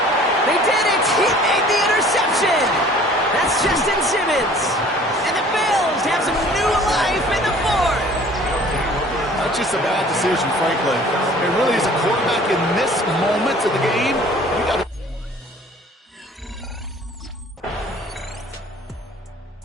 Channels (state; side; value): normal; both; correlation 0.50